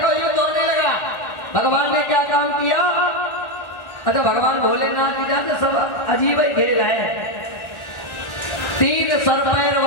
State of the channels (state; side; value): late; right; 1.4 ms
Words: युद्ध होने लगा। भगवान ने क्या काम किया? अच्छा, भगवान भोलेनाथ की जानते सब अजीब ही खेल है। 3 सर पैर